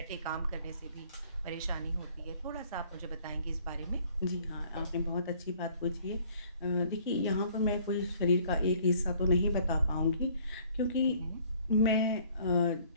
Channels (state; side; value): inverted; both; correlation -0.58